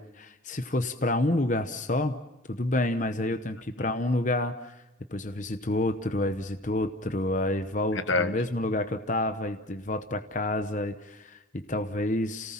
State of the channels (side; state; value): both; normal; correlation 0.43